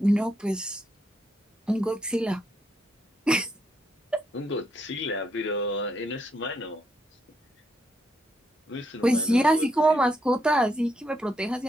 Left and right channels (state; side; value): normal; both; correlation 0.77